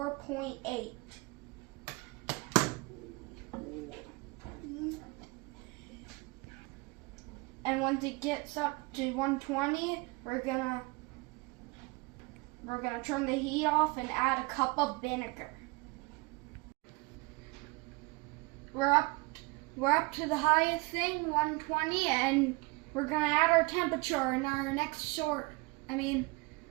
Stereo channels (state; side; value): quieter; left; 26.1 dB